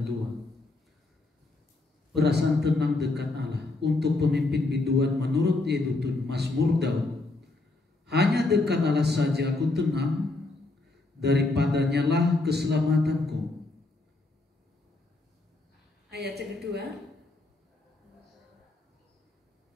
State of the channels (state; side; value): quieter; right; 3.1 dB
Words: 2. Perasaan tenang dekat Allah untuk pemimpin biduan menurut Yedutun Mazmur Daud. Hanya dekat Allah saja aku tenang, daripadanya lah keselamatanku. Ayat yang kedua.